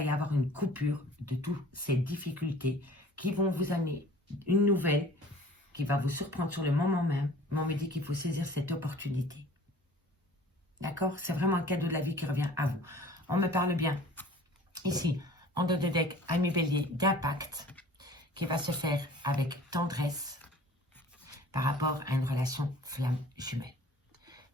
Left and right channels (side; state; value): both; normal; correlation 0.48